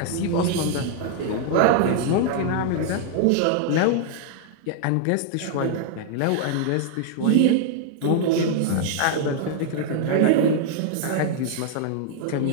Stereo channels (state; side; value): different; both; correlation 0.00